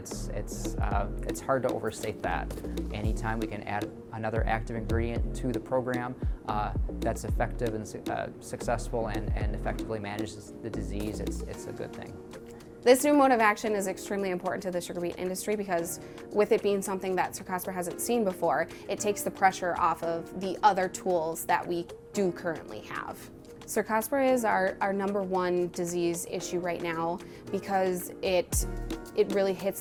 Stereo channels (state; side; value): identical; both; correlation 1.00